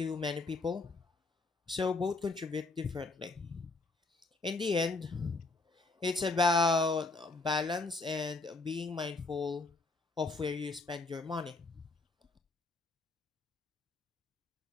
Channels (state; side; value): quieter; right; 3.5 dB